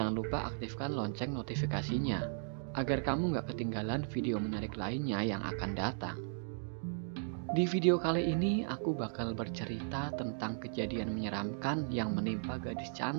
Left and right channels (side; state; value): left; silent; digital silence